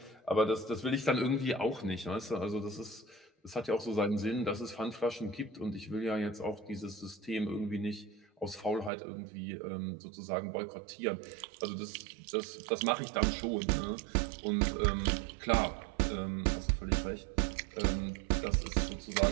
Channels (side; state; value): left; drops out; at 8.9 s